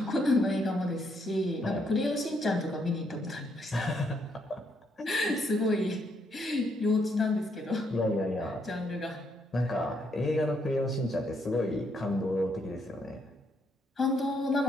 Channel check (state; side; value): normal; both; correlation 0.74